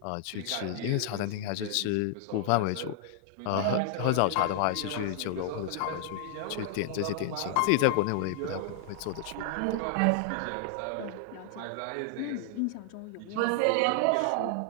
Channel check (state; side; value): different; both; correlation 0.00